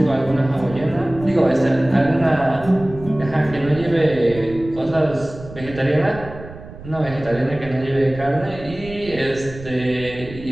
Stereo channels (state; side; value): noise; right; rumble, 15 dB below the sound